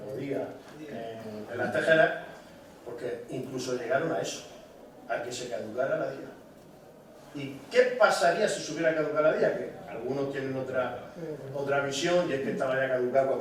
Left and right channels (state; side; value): identical; both; correlation 1.00